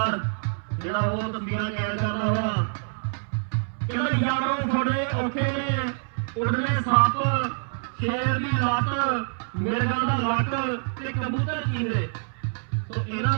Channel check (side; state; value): left; silent; 61 dB below the other